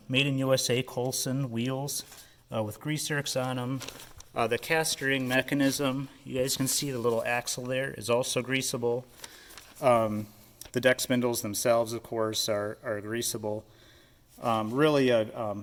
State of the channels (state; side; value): identical; both; correlation 1.00